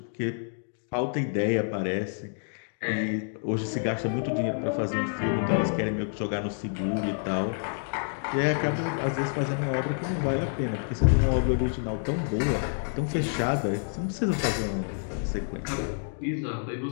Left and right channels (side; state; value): right; silent; digital silence